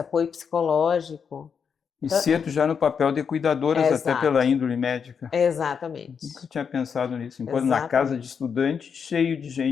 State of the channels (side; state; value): right; quieter; 6.6 dB